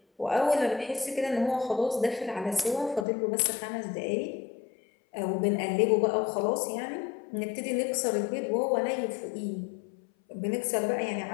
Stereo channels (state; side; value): drops out; right; at 3.1 s